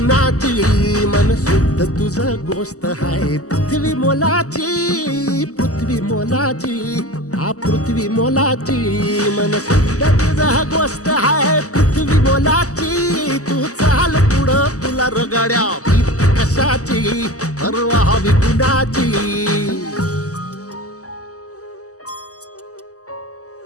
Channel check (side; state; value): right; late; 0.66 ms